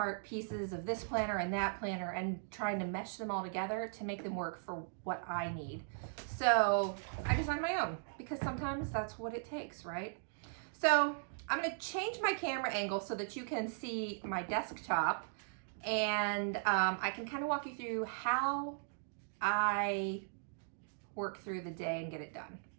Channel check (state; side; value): silent; left; digital silence